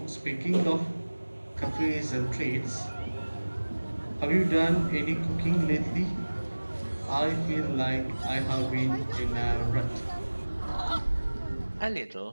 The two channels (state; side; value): inverted; both; correlation -1.00